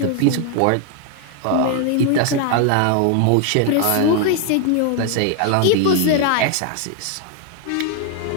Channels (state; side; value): different; both; correlation 0.01